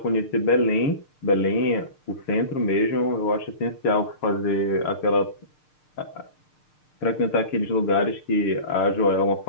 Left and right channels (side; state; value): right; late; 6.6 ms